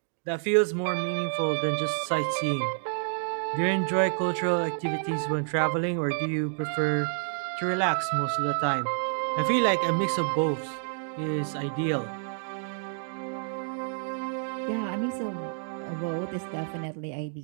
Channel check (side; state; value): left; silent; digital silence